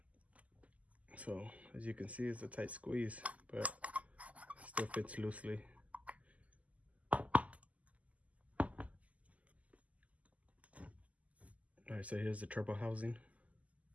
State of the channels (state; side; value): late; left; 0.072 ms